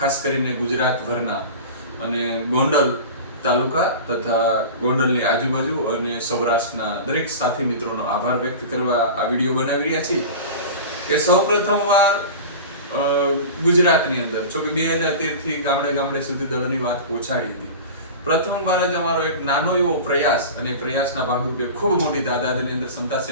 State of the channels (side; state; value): both; inverted; correlation -0.32